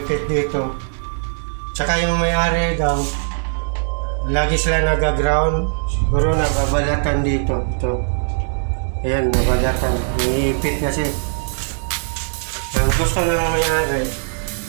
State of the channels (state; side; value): silent; left; digital silence